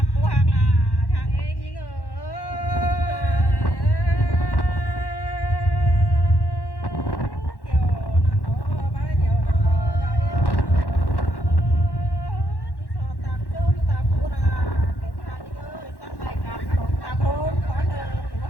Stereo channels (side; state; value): right; late; 1.1 ms